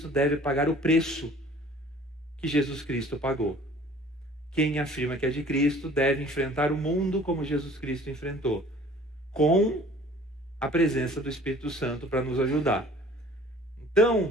deve pagar o preço que Jesus Cristo pagou. Quem afirma que é de Cristo, deve enfrentar o mundo como Jesus Cristo enfrentou, com a presença do Espírito Santo para nos ajudar. Então,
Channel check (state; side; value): normal; both; correlation 0.50